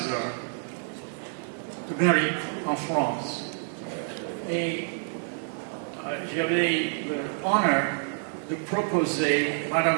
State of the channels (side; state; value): left; silent; 59 dB below the other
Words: d'Amérique en France. Et j'avais l'honneur de proposer